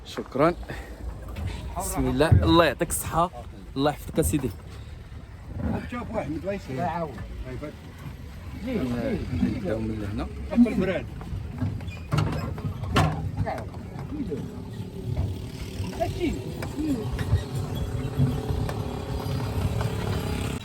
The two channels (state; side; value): identical; both; correlation 1.00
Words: شكرا. بسم الله. الله يعطيك الصحه. الله يحفظك اسيدي. شوف واحد مدويس لا عاود نبداو من هنا. البراد